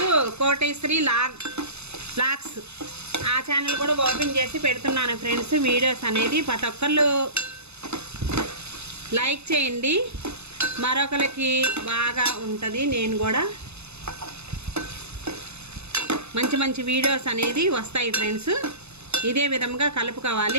కోటేశ్వరి లాగ్స్, ఆ ఛానల్ కూడా ఓపెన్ చేసి పెడుతున్నాను ఫ్రెండ్స్. వీడియోస్ అనేది ప్రతి ఒక్కళ్ళు లైక్ చేయండి. మరొకరికి బాగా ఉంటుంది. నేను కూడా మంచి మంచి వీడియోస్ అనేది వస్తాయి ఫ్రెండ్స్. ఇదే విధంగా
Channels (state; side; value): late; left; 0.80 ms